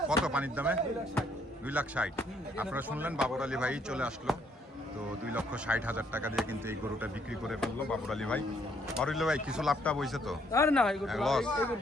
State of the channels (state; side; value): normal; both; correlation 0.68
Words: কত পানির দামে? 2,60,000। আপনারা শুনলেন বাবর আলী ভাই চলে আসলো, তো 2,60,000 টাকা দিয়ে কিন্তু এই গরুটা বিক্রি করে ফেললো বাবর আলী ভাই। বাবর আলী ভাই কিছু লাভটা বইছে তো? আর না এই করতে লস। এই